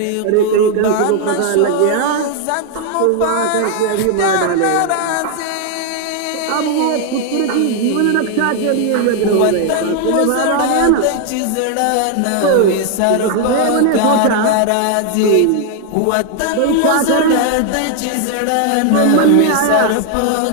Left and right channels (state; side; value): different; both; correlation 0.00